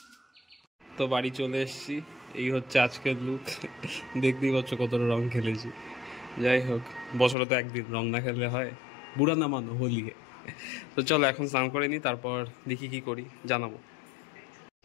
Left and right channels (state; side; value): drops out; right; at 7.4 s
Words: তো বাড়ি চলে এসেছি, এই হচ্ছে আজকের লুক। দেখতেই পাচ্ছ কতটা রং খেলেছি। যাই হোক, বছরে তো একদিন, রং না খেললে হয়? বুড়া না মানো, হোলি। তো চলো এখন স্নান করে নিই, তারপর দেখি কি করি জানাবো।